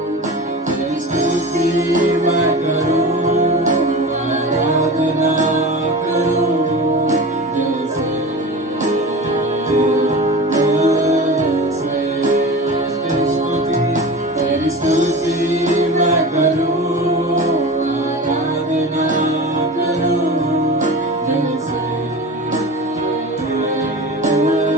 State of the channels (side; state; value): both; normal; correlation 0.32